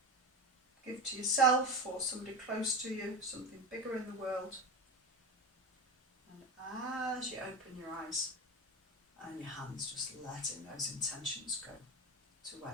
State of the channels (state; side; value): normal; both; correlation 0.23